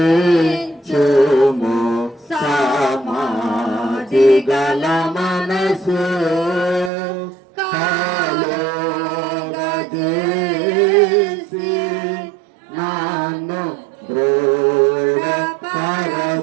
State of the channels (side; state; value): left; drops out; at 6.9 s